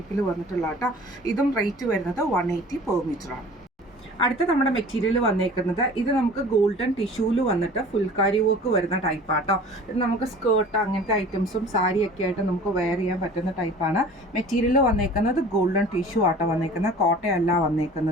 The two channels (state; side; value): normal; both; correlation 0.44